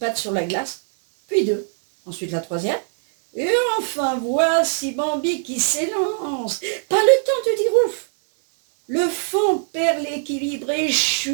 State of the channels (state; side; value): silent; left; 60 dB below the other